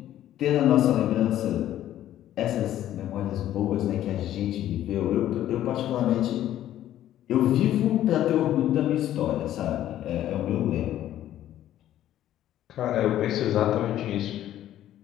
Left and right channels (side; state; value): right; quieter; 12.4 dB